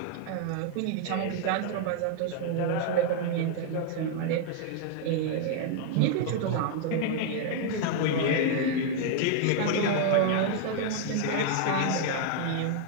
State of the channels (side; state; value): both; different; correlation 0.00